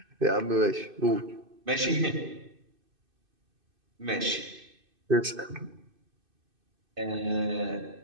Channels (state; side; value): late; left; 2.6 ms